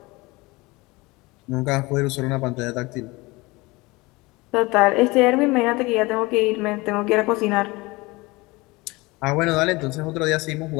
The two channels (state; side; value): quieter; right; 23.0 dB